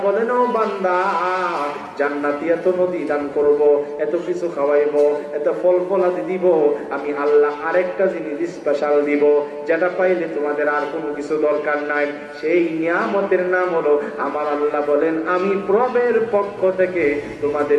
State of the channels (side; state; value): both; identical; correlation 1.00